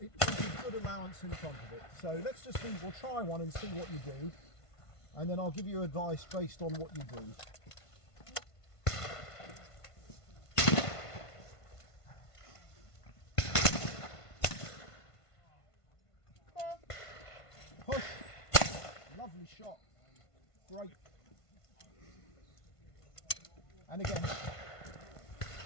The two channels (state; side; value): late; right; 1.5 ms